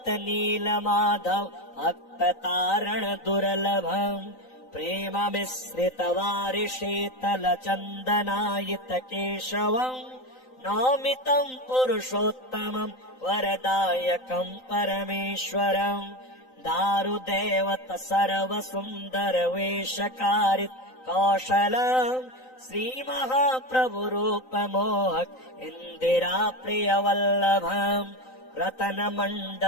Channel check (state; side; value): late; right; 3.9 ms